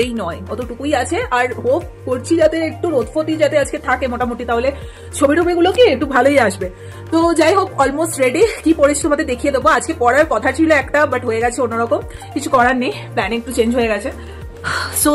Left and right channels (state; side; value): identical; both; correlation 1.00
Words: নয় অতটুকুই আছে। আর হোপ করছি যাতে একটু রোদফতি যাতে আজকে থাকে মোটামুটি, তাহলে ছবি টবিগুলো কি একটু ভালোই আসবে। তো যাই হোক, অলমোস্ট রেডি। কি পরেছি তোমাদের দেখিয়ে দেবো। আজকে পড়ার কথা ছিল একটা, বাট হয়ে গেছে অন্যরকম, কিছু করার নেই, প্ল্যানিং একটু চেঞ্জ হয়ে গেছে। সো